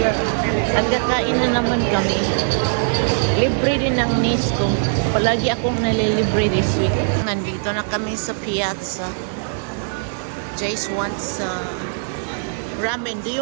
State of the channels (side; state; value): left; silent; 65 dB below the other